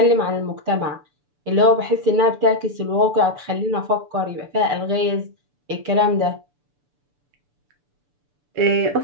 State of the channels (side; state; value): left; late; 6.9 ms